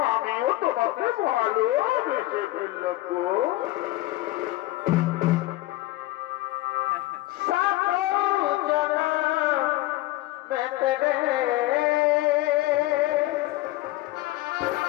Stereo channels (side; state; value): right; quieter; 18.0 dB